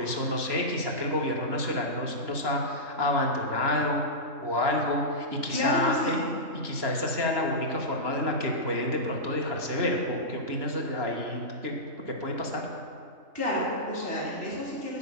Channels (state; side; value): late; left; 3.0 ms